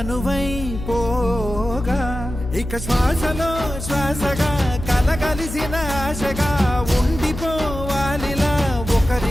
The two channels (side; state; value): left; noise; hum, 8 dB below the sound